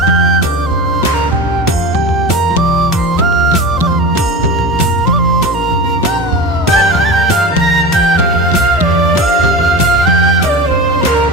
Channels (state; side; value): normal; both; correlation 0.30